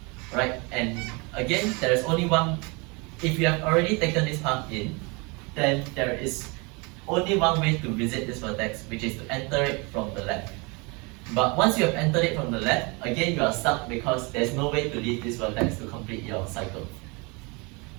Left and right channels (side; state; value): left; quieter; 29.1 dB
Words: Right, and again, there is only one. If you have already taken this path in, then there is only one way to visit this vertex, which is to enter it from the left. But once you have entered it from the left, again you are stuck because there's no way to leave this vertex to complete your cycle.